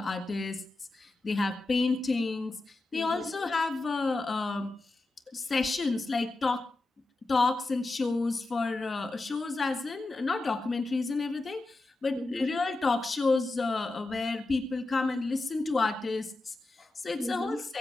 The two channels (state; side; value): quieter; right; 3.1 dB